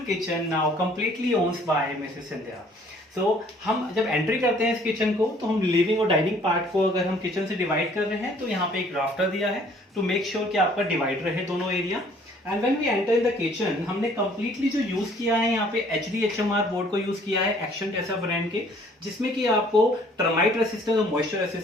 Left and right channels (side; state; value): both; normal; correlation 0.58